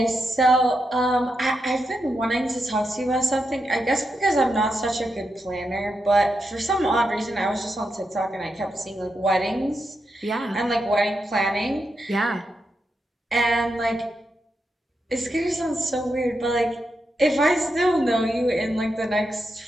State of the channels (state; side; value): normal; both; correlation 0.86